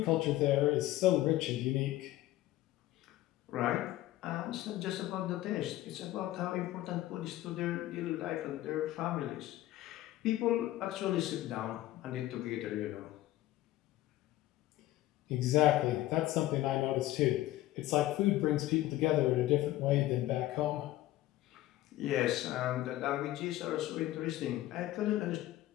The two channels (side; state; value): right; quieter; 15.5 dB